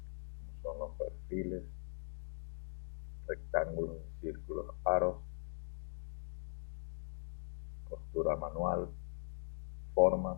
Son los perfiles, rectángulos, círculos, aros, costura manual, formas.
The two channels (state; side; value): silent; right; digital silence